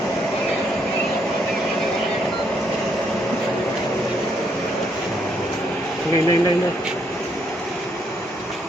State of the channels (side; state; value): both; normal; correlation 0.73